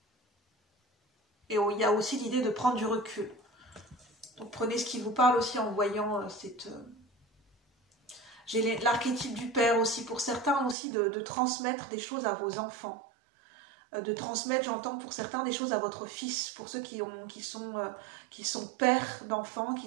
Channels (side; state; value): left; drops out; at 10.8 s